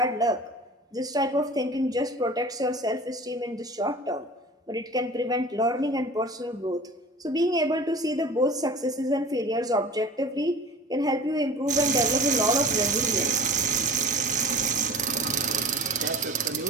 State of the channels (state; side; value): normal; both; correlation 0.39